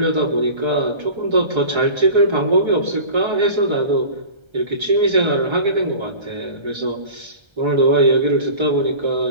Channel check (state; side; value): late; left; 1.3 ms